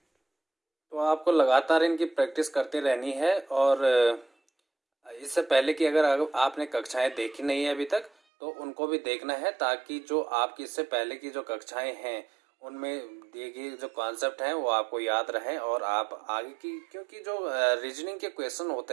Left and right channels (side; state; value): left; drops out; at 8.1 s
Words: तो आपको लगातार इनकी प्रैक्टिस करते रहनी है और इससे पहले कि अगर आपने कक्षाएं देखी नहीं है अभी तक तो उनको भी देखना है, ताकि जो आपकी इससे पहले की जो कक्षाएं हैं उनमें दिए गए जो कॉन्सेप्ट हैं वो आपको याद रहें और आप आगे की, क्योंकि जो रीजनिंग के क्वेश्चन होते